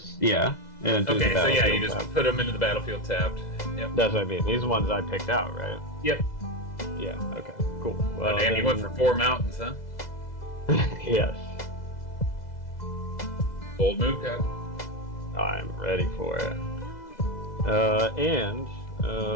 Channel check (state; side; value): late; right; 2.0 ms